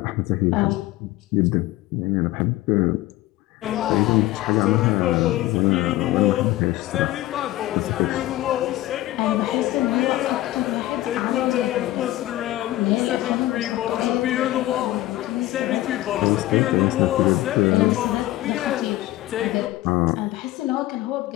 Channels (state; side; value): quieter; right; 16.3 dB